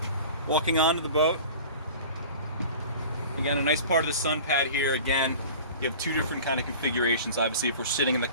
Walking onto the boat. Again, a nice part of the sun pad here. Again, you have two different kind of configurations. Obviously, if we're sitting in the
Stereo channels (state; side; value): inverted; both; correlation -0.40